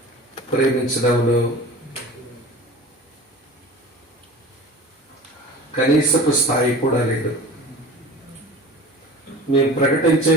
ప్రేమించడంలో కనీసపు స్థాయి కూడా లేదు. మేము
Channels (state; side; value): normal; both; correlation 0.38